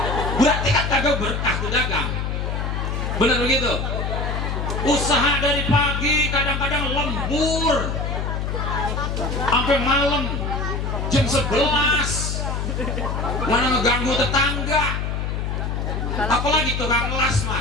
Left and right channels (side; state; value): left; noise; hum, 2 dB below the sound